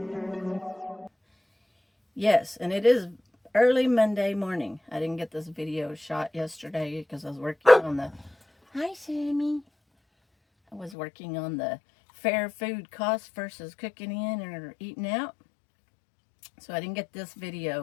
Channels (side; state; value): right; drops out; at 11.0 s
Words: Yes, and it is early Monday morning. I didn't get this video shot yesterday because I was working on the... Hi, Sammy. I was working on the fair food cost versus cooking in or eating out. So I didn't get this